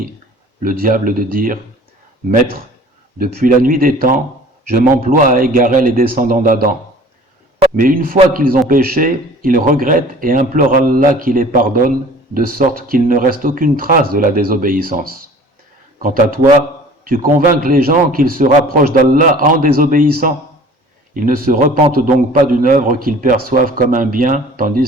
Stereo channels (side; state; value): both; normal; correlation 0.46